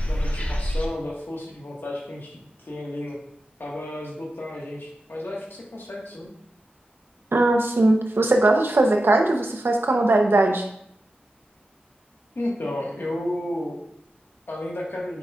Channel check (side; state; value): both; normal; correlation 0.91